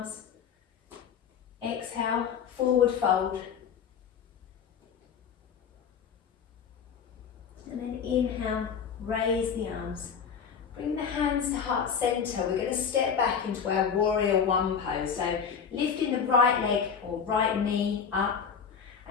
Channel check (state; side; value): quieter; right; 6.8 dB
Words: Exhale, forward fold. And then inhale, raise the arms. Bring the hands to heart center. We're going to step back into our warrior one pose. So lifting the right leg or right knee up